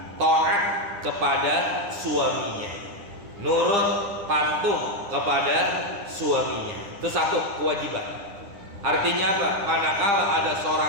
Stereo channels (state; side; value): late; left; 9.9 ms